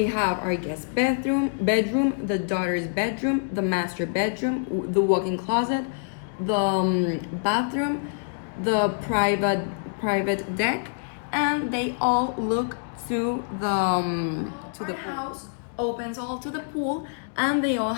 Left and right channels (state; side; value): silent; right; digital silence